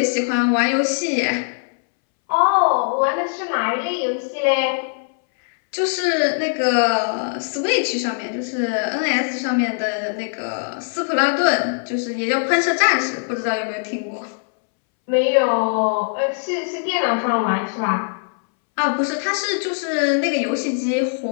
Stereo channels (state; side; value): silent; right; 64 dB below the other